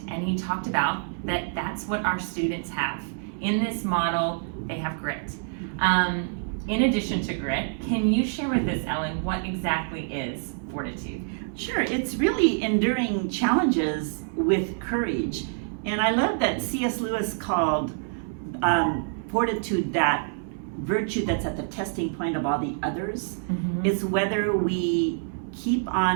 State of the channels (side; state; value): left; silent; 60 dB below the other